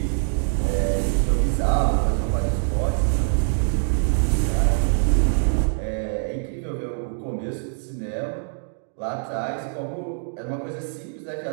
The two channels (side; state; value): left; silent; digital silence